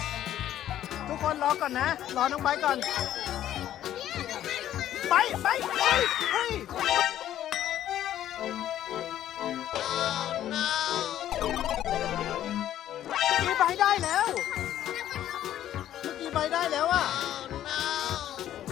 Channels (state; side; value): quieter; right; 11.9 dB